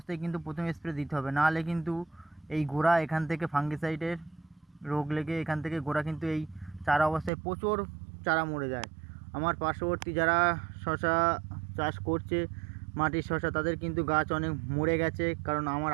কিন্তু প্রথম স্প্রে দিতে হবে, নাহলে কিন্তু এই গোড়া এখান থেকে ফাঙ্গিসাইডের রোগ লেগে এখান থেকে গোড়া কিন্তু এই চারা অবস্থায় প্রচুর চারা মরে যায়। আমার পার্শ্ববর্তী যারা শশা চাষ করছে, মাটির শশা, তাদের কিন্তু গাছ অনেক মরে গেছে, কারণ আমার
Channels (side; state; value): left; drops out; at 7.3 s